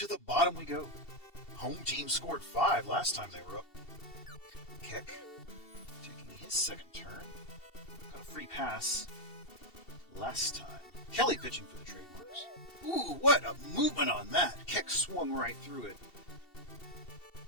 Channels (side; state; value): right; late; 2.7 ms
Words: the bottom we go. Home team scored 5 last time they were up. Keck taking his second turn. Got a free pass last time. Kelly pitching for the trademarks. Ooh, what a movement on that. Keck swung right through it.